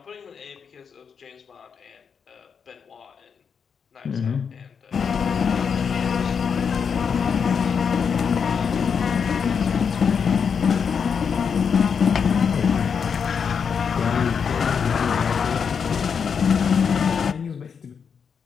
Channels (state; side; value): quieter; right; 6.5 dB